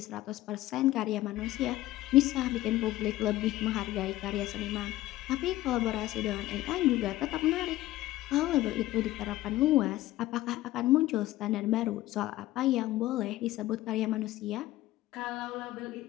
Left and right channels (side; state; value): right; quieter; 16.2 dB